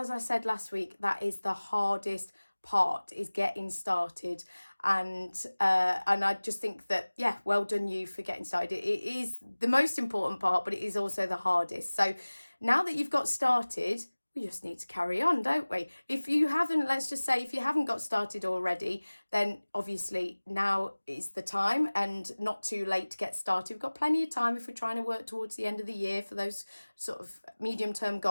I said last week, that is the hardest part, is getting started. And I just think that, yeah, well done you for getting started. It is the most important part, but it is also the hardest. So now that you've got started, we just need to carry on, don't we? If you haven't, let's just say, if you haven't got started already, then obviously now is the time and not too late to get started. We've got plenty of time if we're trying to work towards the end of the year for those sort of medium-term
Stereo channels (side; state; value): both; inverted; correlation -1.00